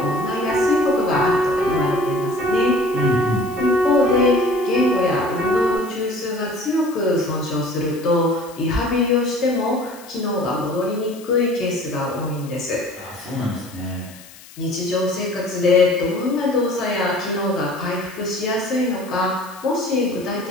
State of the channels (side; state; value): left; noise; hiss, 21 dB below the sound